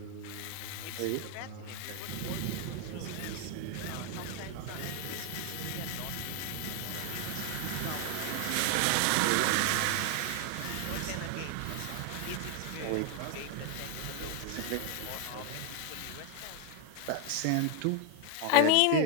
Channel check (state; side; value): different; both; correlation 0.01